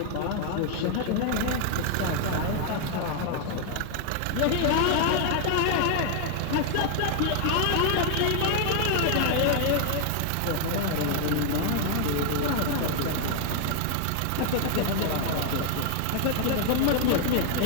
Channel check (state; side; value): different; both; correlation 0.00